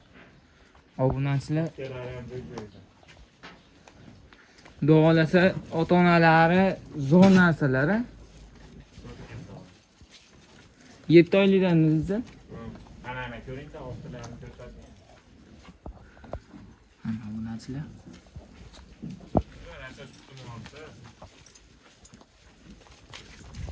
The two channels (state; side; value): identical; both; correlation 1.00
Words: Obunachilar doğalasa ota-onalari zo'r narsalar. 7 oylikdan o'zi. Ana ko'ringda ostilarini ko'rsatdi. Mana obunachilar.